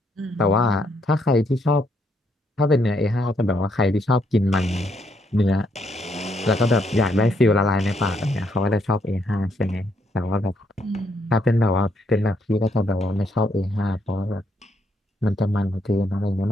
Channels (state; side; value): normal; both; correlation 0.74